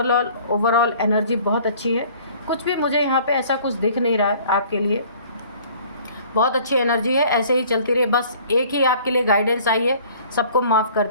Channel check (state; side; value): inverted; both; correlation -0.52